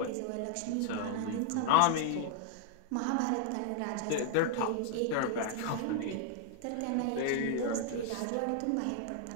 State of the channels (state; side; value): different; both; correlation -0.01